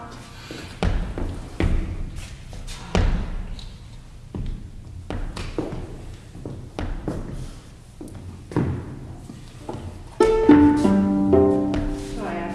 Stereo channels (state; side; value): identical; both; correlation 1.00